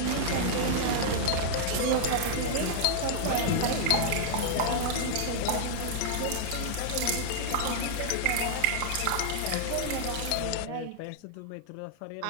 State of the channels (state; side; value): different; both; correlation -0.01